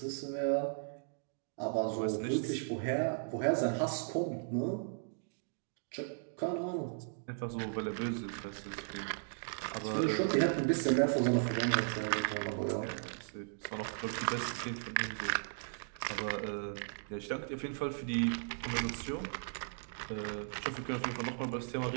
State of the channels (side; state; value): left; silent; digital silence